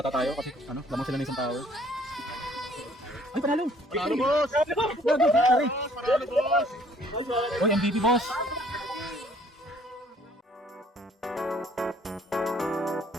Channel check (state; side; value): normal; both; correlation 0.60